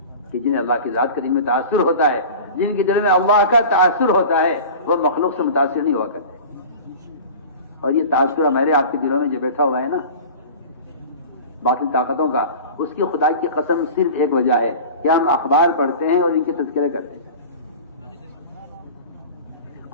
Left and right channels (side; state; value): both; inverted; correlation -0.37